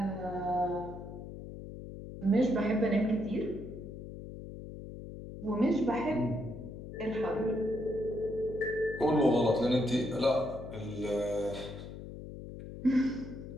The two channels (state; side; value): noise; left; hum, 11 dB below the sound